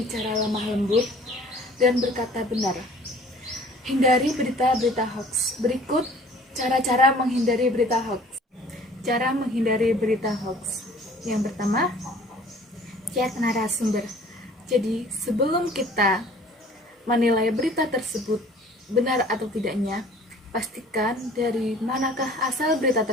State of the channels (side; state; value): both; normal; correlation 0.50